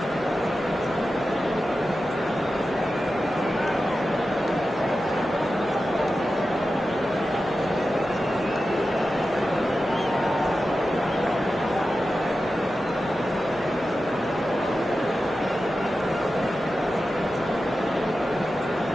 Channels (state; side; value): normal; both; correlation 0.92